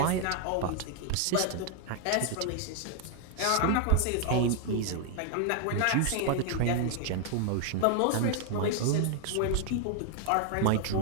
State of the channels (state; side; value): different; both; correlation 0.00